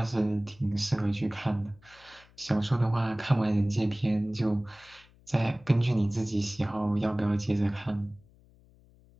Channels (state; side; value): noise; left; hum, 28 dB below the sound